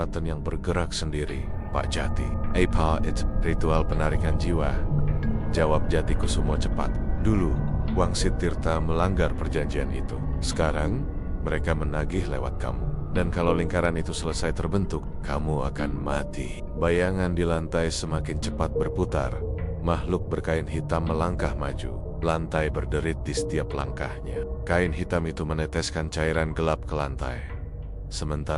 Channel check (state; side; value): identical; both; correlation 1.00